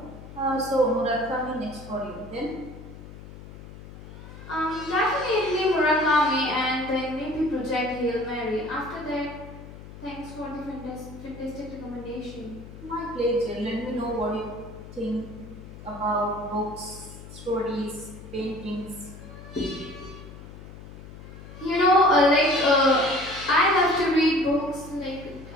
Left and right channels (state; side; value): noise; left; hum, 15 dB below the sound